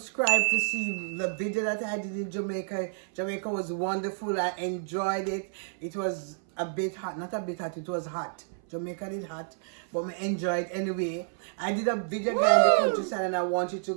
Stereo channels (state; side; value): silent; left; 57 dB below the other